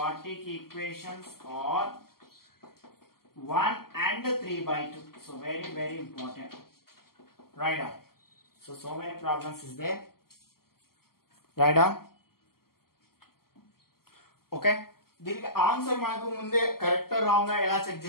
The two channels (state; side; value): late; right; 0.93 ms